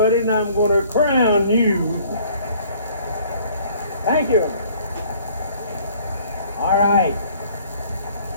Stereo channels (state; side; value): inverted; both; correlation -0.57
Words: and I'm going to crown you. Thank you. All right.